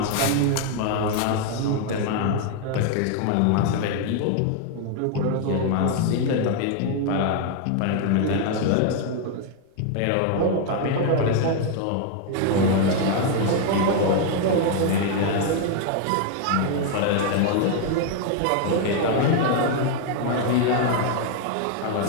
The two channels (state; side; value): different; both; correlation 0.00